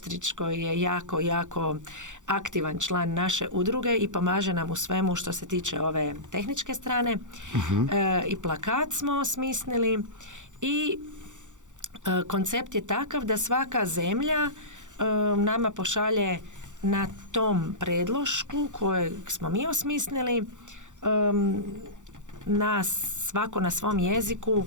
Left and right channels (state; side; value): late; left; 0.86 ms